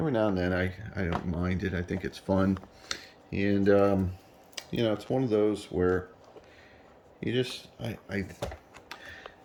now and then I don't mind it. I think it's fun. And you know, it's one of those where you just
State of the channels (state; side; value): identical; both; correlation 1.00